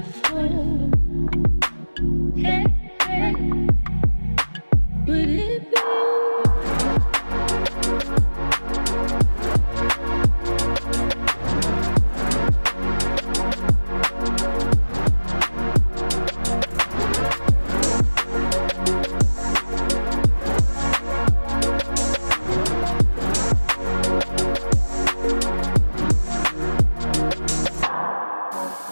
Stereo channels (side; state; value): both; inverted; correlation -1.00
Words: Hey, hey. Would it be?